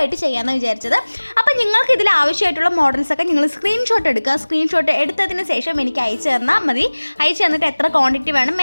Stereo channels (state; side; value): inverted; both; correlation -1.00